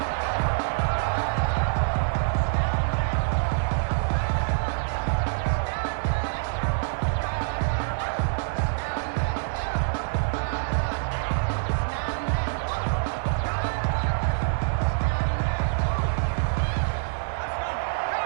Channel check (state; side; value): silent; left; digital silence